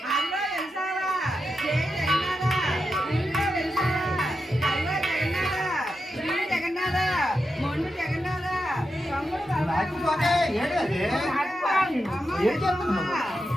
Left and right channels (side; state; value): both; normal; correlation 0.87